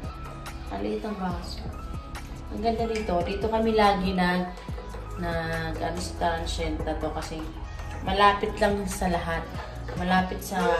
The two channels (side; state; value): both; identical; correlation 1.00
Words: Maliit ang baso. Ang ganda dito. Dito kami lagi ano sa transient na to kasi malapit lang sa lahat. Malapit sa